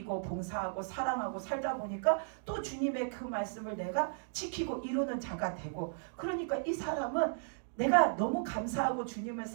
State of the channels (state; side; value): silent; left; digital silence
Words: 봉사하고 사랑하고 살다 보니까 또 주님의 그 말씀을 내가 지키고 이루는 자가 되고, 그러니까 이 사람은 내가 너무 감사하고 주님을